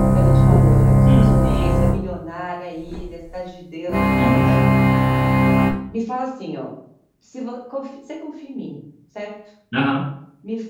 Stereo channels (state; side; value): identical; both; correlation 1.00